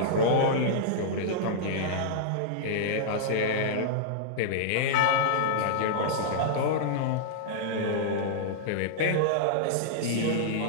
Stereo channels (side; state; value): both; different; correlation -0.02